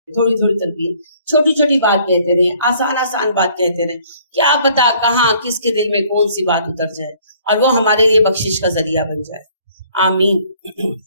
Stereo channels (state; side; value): inverted; both; correlation -0.59